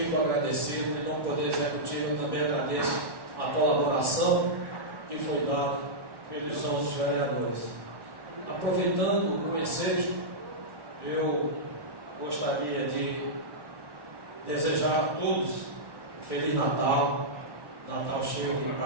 agradecido, em nome do Poder Executivo, eu também agradeço a colaboração que foi dada pelos nossos vereadores. Aproveitando o ensejo, eu gostaria de desejar a todos um Feliz Natal, Natal cheio de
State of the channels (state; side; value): late; left; 1.1 ms